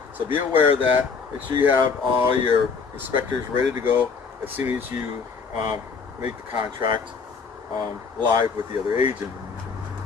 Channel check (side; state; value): right; quieter; 5.3 dB